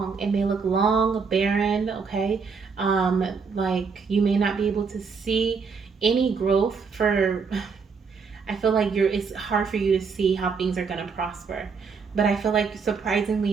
It may look long, barren, okay? Like you may not be able to see any growth for, I feel like it's hard for you to see how things are going to prosper. But I feel like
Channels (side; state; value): left; quieter; 5.4 dB